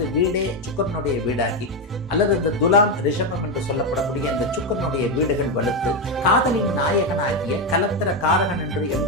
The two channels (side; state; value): both; normal; correlation 0.08